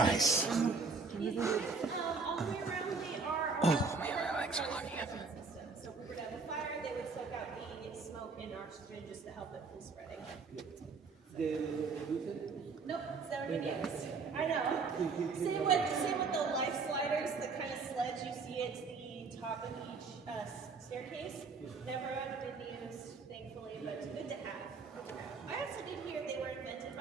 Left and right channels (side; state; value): left; quieter; 4.5 dB